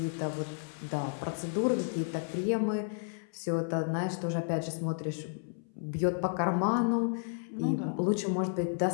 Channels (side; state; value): right; silent; 56 dB below the other